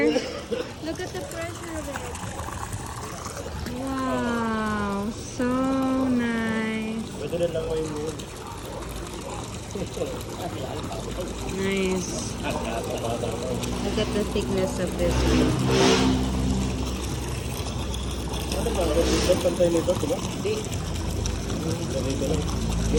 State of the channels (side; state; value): both; identical; correlation 1.00